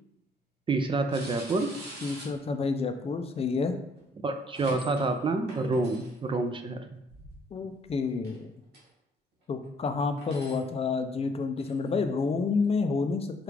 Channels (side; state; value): both; normal; correlation 0.64